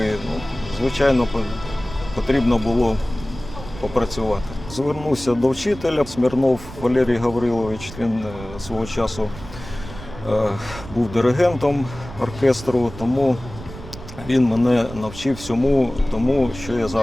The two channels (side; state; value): right; noise; rumble, 14 dB below the sound